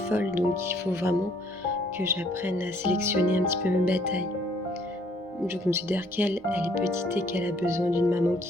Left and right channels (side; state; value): both; normal; correlation 0.63